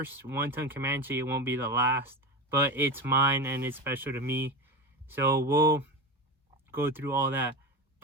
one-ton Comanche, it won't be the last, but it's mine and it's special to me. So we'll go through all that.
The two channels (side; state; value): both; normal; correlation 0.22